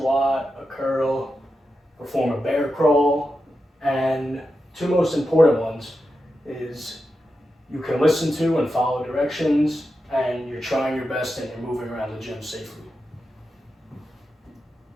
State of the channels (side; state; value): both; normal; correlation 0.89